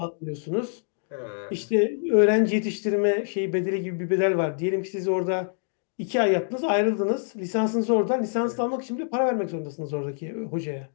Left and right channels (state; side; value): silent; right; digital silence